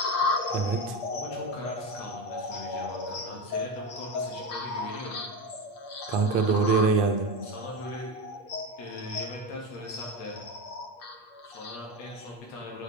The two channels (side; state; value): right; late; 8.4 ms